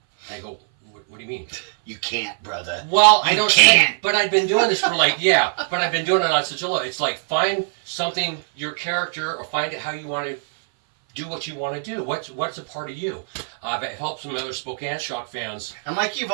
I go, what do you mean? You can't, brother. Well, I don't can't. But I've been doing this for but I've been doing it on such a low. It's like find something, your character, or find it how you want to do what you want to do. What's a part of you? It helps some other Spokane Shock fans. And like you've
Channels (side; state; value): left; silent; 59 dB below the other